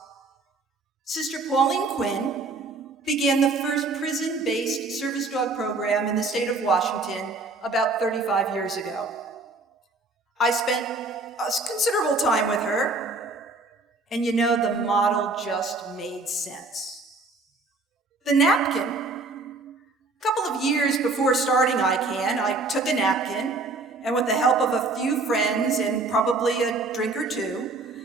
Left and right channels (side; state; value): left; quieter; 3.5 dB